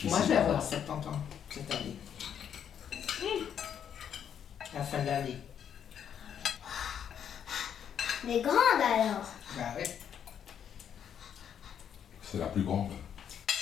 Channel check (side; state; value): right; quieter; 8.7 dB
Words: Moi, je vais avoir 70 ans cette année. À la fin de l'année. Mais grande alors. Bah ouais. C'est la plus grande.